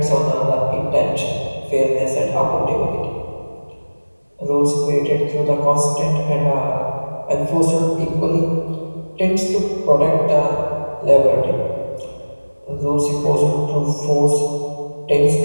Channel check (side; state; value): both; inverted; correlation -1.00